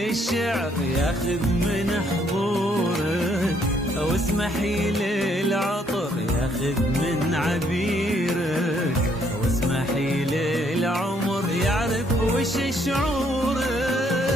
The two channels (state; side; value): normal; both; correlation 0.68